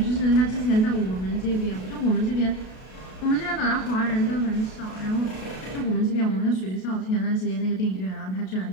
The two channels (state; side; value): late; right; 32 ms